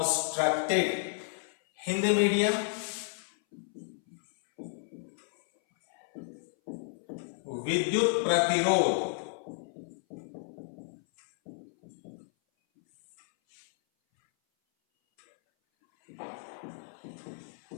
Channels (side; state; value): right; silent; 56 dB below the other